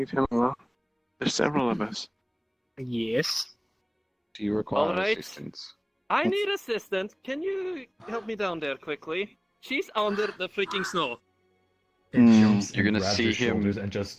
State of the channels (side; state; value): both; identical; correlation 1.00